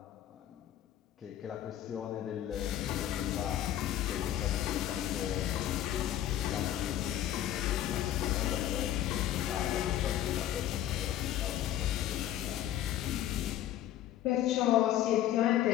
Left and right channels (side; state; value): right; quieter; 12.2 dB